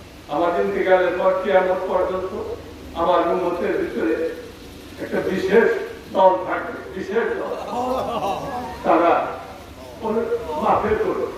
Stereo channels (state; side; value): identical; both; correlation 1.00